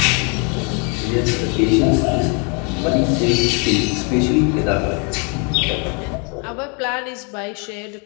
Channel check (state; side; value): quieter; right; 35.6 dB